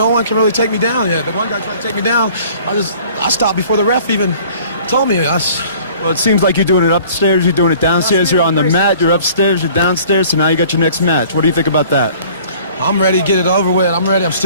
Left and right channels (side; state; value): both; inverted; correlation -0.51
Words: one can really take me down yet. The one guy tried to take me down. I stopped before the ref even told me. Well, it seems like you're doing it upstairs. You're doing it downstairs. You're on the mat. You're upstairs. You're downstairs. So now you got your next match. What do you think about that? I'm ready to get it over with. I'm ready. I'm